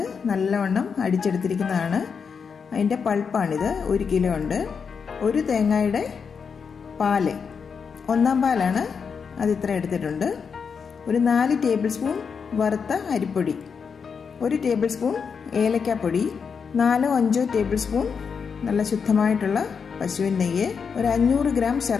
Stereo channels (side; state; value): right; quieter; 6.1 dB